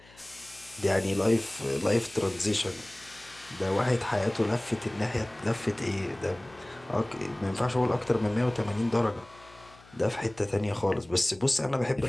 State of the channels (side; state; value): left; noise; hum, 25 dB below the sound